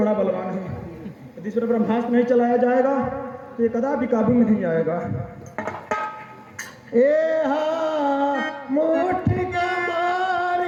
बलवान है, यदि इस पर ब्रह्मास्त्र नहीं चलाया जाएगा तो ये कदापि काबू में नहीं आएगा। ए हा मुट्ठी का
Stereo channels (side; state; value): both; identical; correlation 1.00